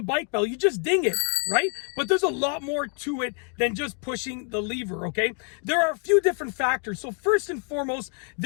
bike bell? You just ding it, right? But there's a lot more to it than just pushing the lever, okay? There are a few different factors. So first and foremost,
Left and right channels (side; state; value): right; quieter; 37.8 dB